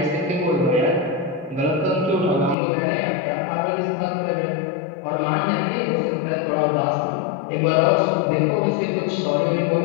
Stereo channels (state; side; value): drops out; right; at 2.6 s